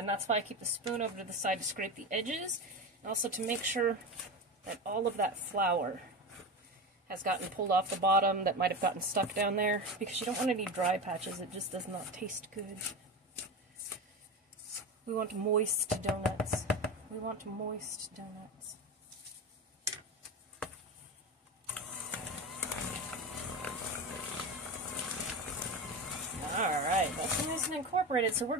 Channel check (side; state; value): both; normal; correlation 0.23